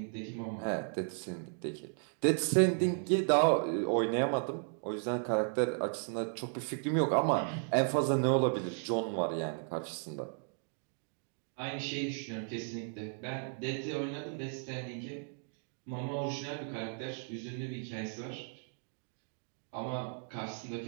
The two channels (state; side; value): silent; left; 54 dB below the other